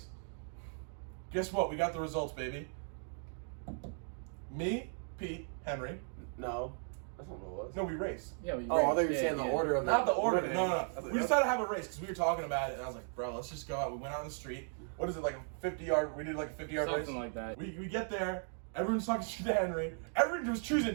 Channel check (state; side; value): silent; left; 53 dB below the other